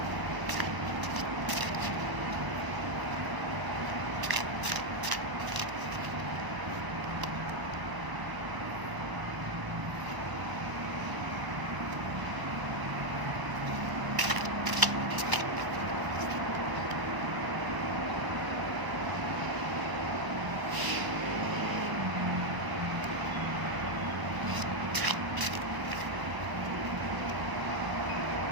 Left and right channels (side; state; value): left; late; 1.0 ms